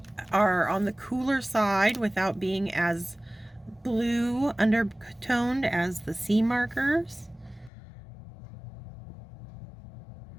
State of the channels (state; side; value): drops out; right; at 7.7 s